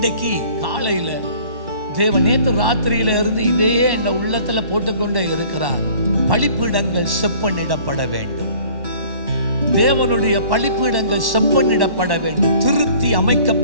காலையில தேவன் நேற்று ராத்திரியில இருந்து இதே என் உள்ளத்துல போட்டுக்கொண்டே இருக்கிறார். பலிப்பீடங்கள் செப்பனிடப்பட வேண்டும். தேவனுடைய பலிப்பீடங்கள் செப்பனிடப்பட வேண்டும். திருத்தி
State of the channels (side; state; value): left; late; 1.1 ms